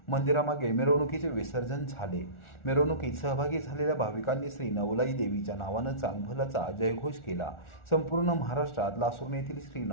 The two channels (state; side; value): late; right; 1.4 ms